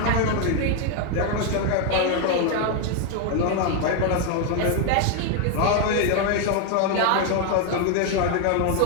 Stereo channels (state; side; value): different; both; correlation 0.01